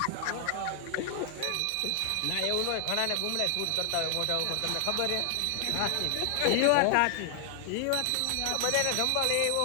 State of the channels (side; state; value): both; different; correlation 0.00